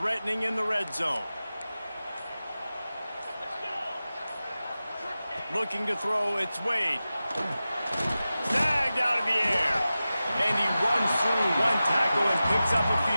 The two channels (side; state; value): both; inverted; correlation -0.95